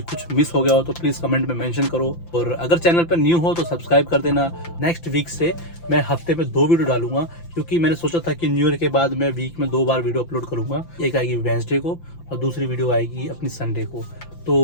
कुछ मिस हो गया हो तो प्लीज़ कमेंट में मेंशन करो, और अगर चैनल पर न्यू हो तो सब्सक्राइब कर देना। नेक्स्ट वीक से मैं हफ्ते में 2 वीडियो डालूंगा, क्योंकि मैंने सोचा था कि न्यू ईयर के बाद मैं वीक में 2 बार वीडियो अपलोड करूँगा। एक आएगी वेडनेसडे को और दूसरी वीडियो आएगी अपनी संडे को। तो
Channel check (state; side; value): late; right; 5.9 ms